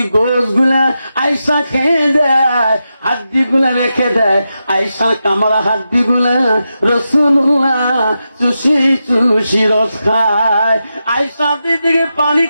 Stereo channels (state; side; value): inverted; both; correlation -0.89